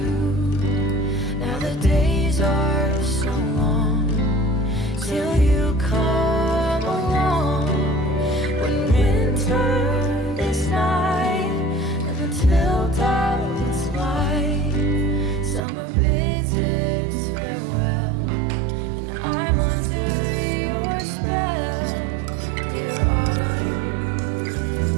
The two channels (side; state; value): left; drops out; at 15.6 s